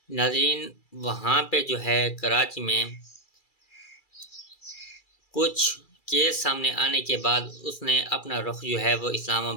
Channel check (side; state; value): right; late; 2.3 ms